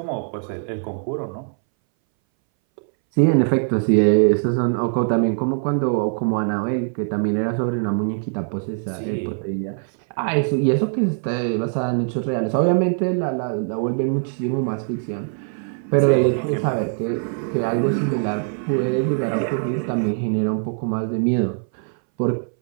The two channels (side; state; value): left; silent; 61 dB below the other